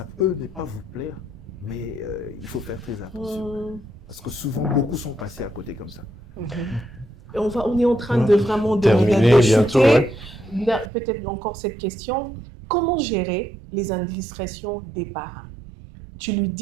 peut ne pas vous plaire, mais il faut faire très attention. Parce que souvent, beaucoup sont passés à côté comme ça. Et on est en train de vraiment terminer bientôt. Peut-être encore cette question. Comment gérer les indiscrétions des parents? Tu lui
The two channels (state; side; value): drops out; left; at 10.9 s